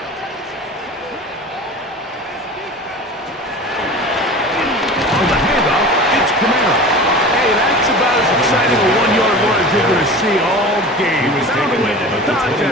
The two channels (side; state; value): both; normal; correlation 0.36